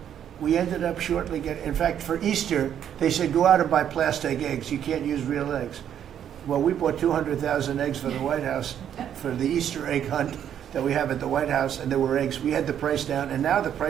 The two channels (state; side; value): quieter; left; 9.6 dB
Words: we ended up shortly getting. In fact, for Easter, they said go out and buy plastic eggs. You can't use real eggs. Well, we bought 200,000 eggs for the White House for the Easter egg hunt that we have at the White House, and there were eggs. We had the price down, and now the